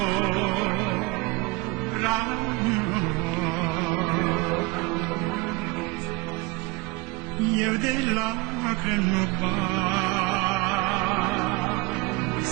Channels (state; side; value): quieter; left; 23.7 dB